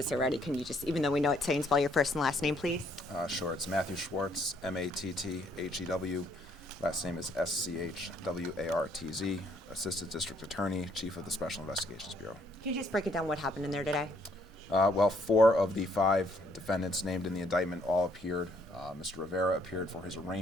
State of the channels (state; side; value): normal; both; correlation 0.67